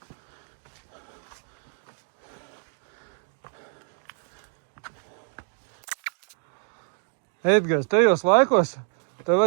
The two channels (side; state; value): left; silent; 57 dB below the other